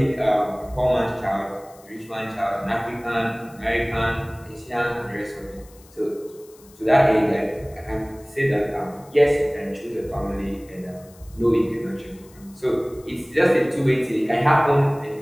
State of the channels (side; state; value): left; noise; hiss, 26 dB below the sound